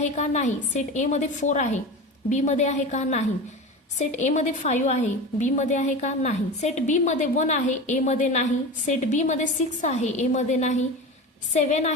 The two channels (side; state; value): both; normal; correlation 0.28